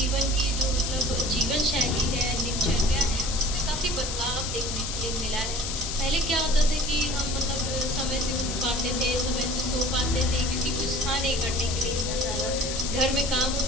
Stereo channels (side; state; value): left; noise; hiss, 4 dB below the sound